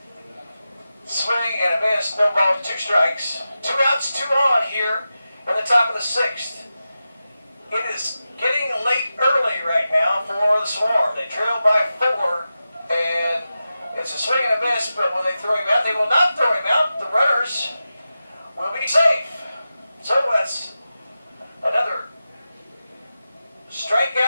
Swing and a miss, no ball, 2 strikes. 2 outs, 2 on here in the top of the 6th. It is getting late early right now for the Swarm. They trail by 4, and it's a swing and a miss, but when they throw him out, they will not throw him out. The runners will be safe. So that's another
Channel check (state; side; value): inverted; both; correlation -0.92